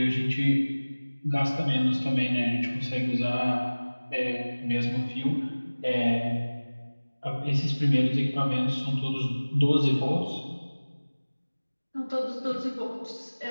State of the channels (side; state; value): both; inverted; correlation -1.00